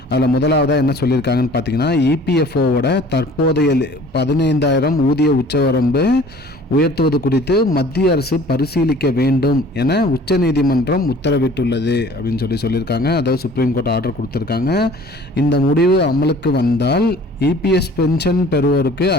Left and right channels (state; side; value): normal; both; correlation 0.49